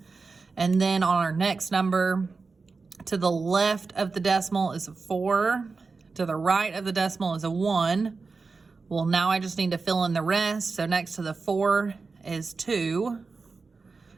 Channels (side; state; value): left; quieter; 4.3 dB